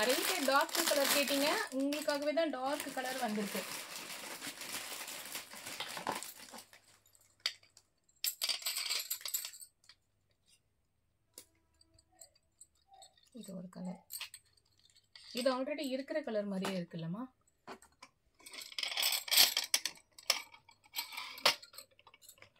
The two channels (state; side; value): identical; both; correlation 1.00